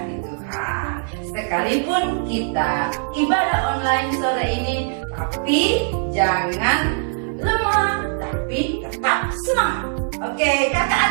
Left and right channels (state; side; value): silent; left; 65 dB below the other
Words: Tuhan. Sekalipun kita ibadah online sore ini, tapi jangan lemah, tapi tetap semangat. Oke, kakak